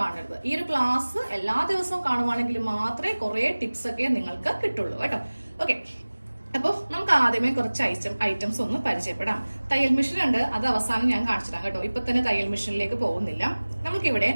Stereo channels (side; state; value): both; inverted; correlation -1.00